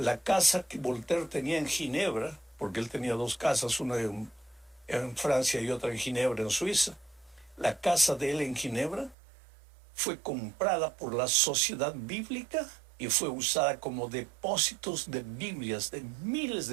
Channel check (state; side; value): drops out; left; at 9.2 s